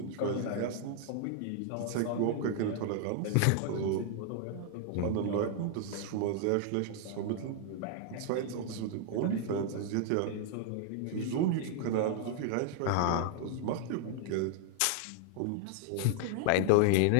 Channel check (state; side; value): different; both; correlation -0.01